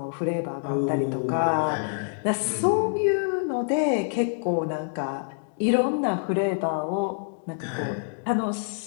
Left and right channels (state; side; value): silent; right; digital silence